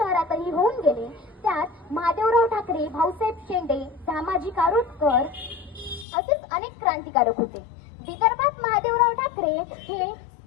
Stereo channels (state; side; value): drops out; right; at 6.1 s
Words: होऊन गेले। त्यात महादेवराव ठाकरे, भाऊसाहेब शेंडे, दामाजी कारोटकर असेच अनेक क्रांतिकारक होते। विदर्भात महादेवराव ठाकरे हे